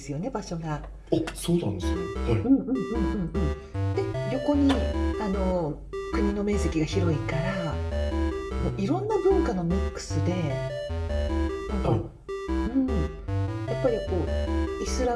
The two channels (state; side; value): identical; both; correlation 1.00